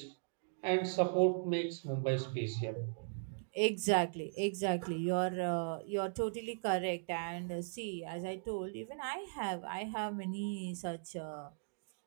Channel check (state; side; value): silent; left; digital silence